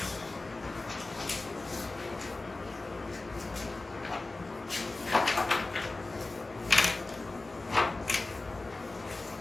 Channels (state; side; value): quieter; right; 3.2 dB